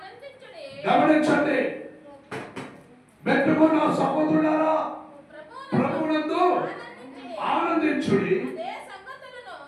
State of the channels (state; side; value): identical; both; correlation 1.00